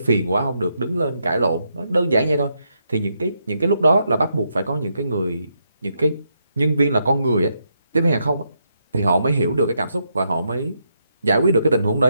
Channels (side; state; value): both; inverted; correlation -0.80